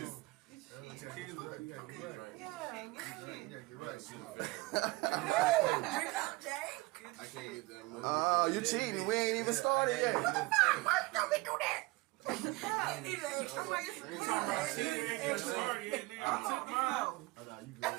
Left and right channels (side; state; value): left; quieter; 22.3 dB